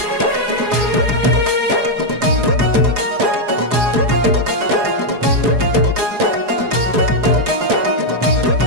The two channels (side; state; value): left; late; 4.8 ms